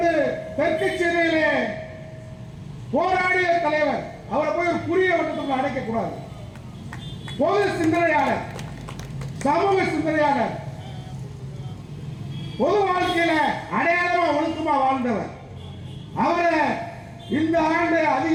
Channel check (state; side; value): identical; both; correlation 1.00